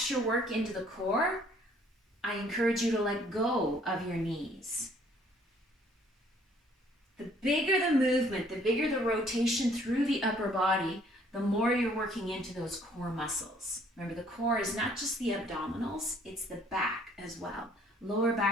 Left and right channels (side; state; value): both; normal; correlation 0.60